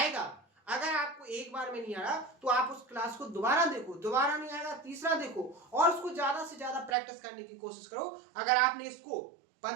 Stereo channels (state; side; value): drops out; left; at 7.0 s